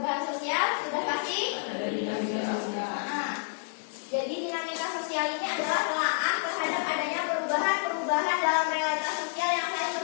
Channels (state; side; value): silent; right; digital silence